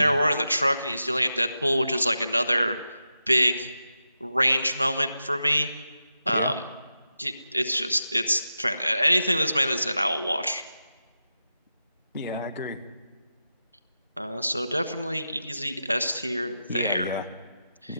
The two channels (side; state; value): both; inverted; correlation -0.89